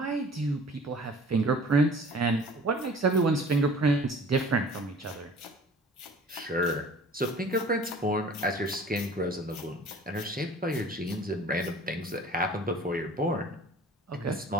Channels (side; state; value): both; normal; correlation 0.46